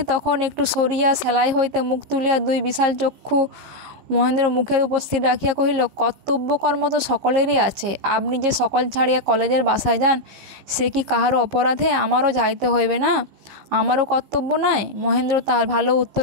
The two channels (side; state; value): left; late; 15 ms